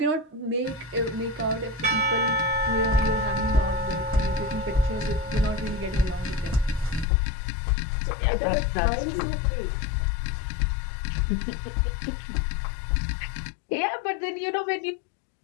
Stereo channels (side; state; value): right; drops out; at 7.1 s